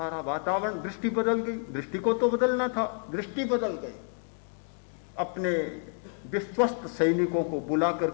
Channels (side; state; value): right; silent; 58 dB below the other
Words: वातावरण, दृष्टि बदल गई। दृष्टि को तो बदलना था, दृष्टि बदल गई। अपने विश्वस्त सैनिकों को बुलाकर